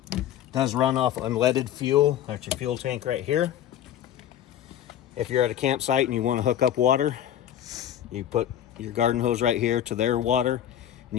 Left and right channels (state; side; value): quieter; right; 10.9 dB